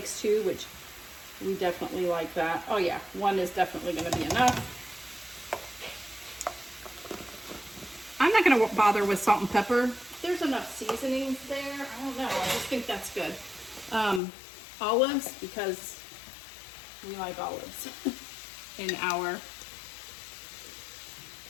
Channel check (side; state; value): right; drops out; at 14.2 s